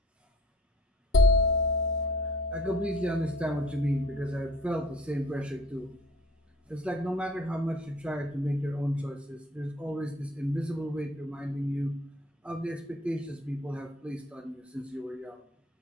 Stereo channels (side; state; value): both; normal; correlation 0.52